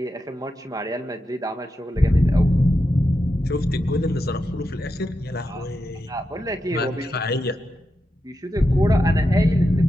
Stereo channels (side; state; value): both; normal; correlation 0.88